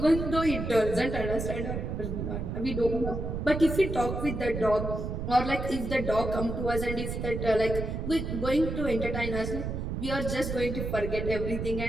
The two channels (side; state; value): right; noise; rumble, 4 dB below the sound